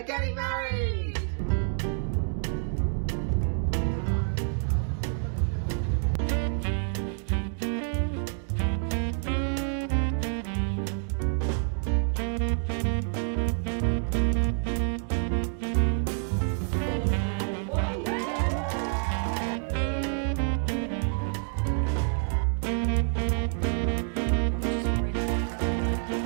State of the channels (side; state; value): left; silent; 59 dB below the other